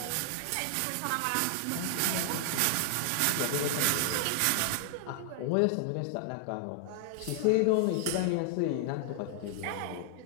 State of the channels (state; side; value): different; both; correlation 0.00